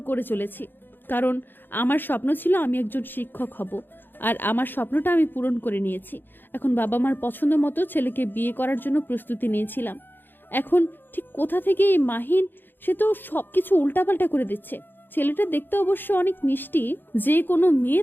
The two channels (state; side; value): late; right; 0.096 ms